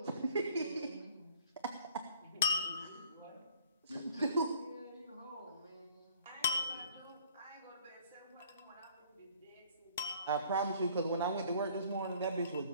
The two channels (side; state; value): both; inverted; correlation -0.56